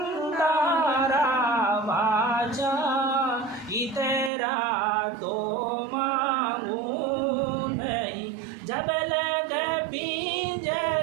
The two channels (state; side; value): drops out; left; at 4.3 s